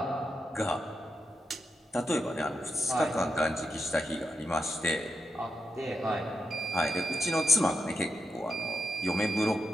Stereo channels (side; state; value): both; normal; correlation 0.85